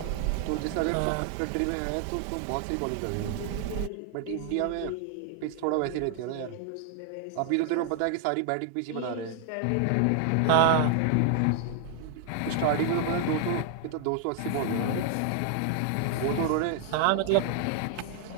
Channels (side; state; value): both; different; correlation 0.00